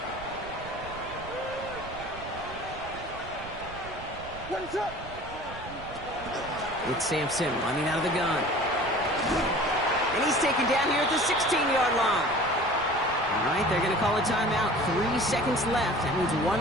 It's Sampson running out of the gun. And he's taken down here at the 16-yard line. All right, they're going to call a timeout. 3 seconds left. That means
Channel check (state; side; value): noise; right; rumble, 14 dB below the sound